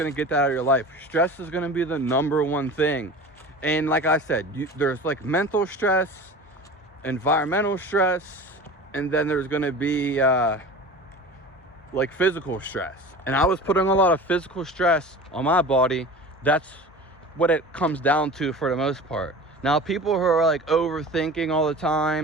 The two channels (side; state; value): both; normal; correlation 0.36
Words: to get that out of your life, stress is going to be the number one thing. And like I said, there's like mental stress, environmental stress, and then there's going to be like physical stress. And I was putting a lot of physical stress on my body. That's what it comes down to for the most part. Now, people who are like overthinking all the